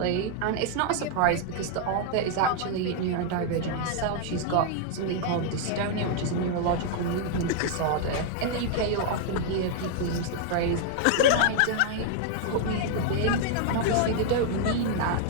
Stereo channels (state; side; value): different; both; correlation 0.00